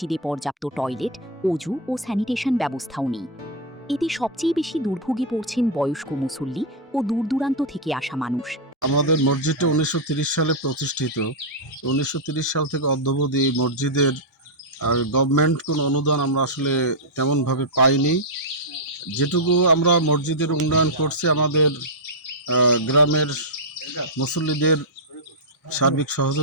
পর্যাপ্ত টয়লেট, অজু ও স্যানিটেশন ব্যবস্থাও নেই। এতে সবচেয়ে বেশি দুর্ভোগে পড়ছেন বয়স্ক মুসল্লি ও দূরদূরান্ত থেকে আসা মানুষ। আমাদের মসজিদটা ১৯৩০ সালে প্রতিষ্ঠিত। ১৯৩০ সাল থেকে অদ্যাবধি এই মসজিদের গভর্নমেন্ট কোনো অনুদান আমরা আসলে তেমনভাবে পাইনি। যেটুকু আমরা মসজিদের উন্নয়ন করছি আমাদের গ্রামের মুসল্লিদের সার্বিক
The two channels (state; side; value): normal; both; correlation -0.05